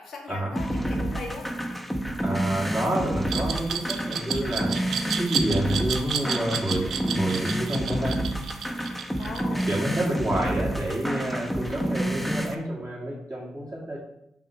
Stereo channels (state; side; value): normal; both; correlation 0.88